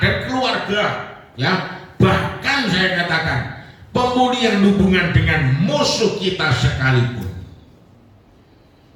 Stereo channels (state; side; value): identical; both; correlation 1.00